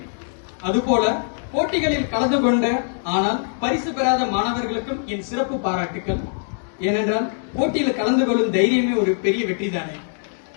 அதுபோல போட்டிகளில் கலந்து கொண்ட ஆனால் பரிசு பெறாத மாணவர்களுக்கும் என் சிறப்பு பாராட்டுக்கள். ஏனென்றால் போட்டியில் கலந்து கொள்ளும் தைரியமே ஒரு பெரிய வெற்றி தானே.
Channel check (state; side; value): silent; right; digital silence